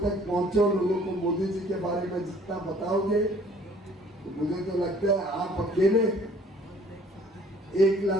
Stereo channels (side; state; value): both; normal; correlation 0.56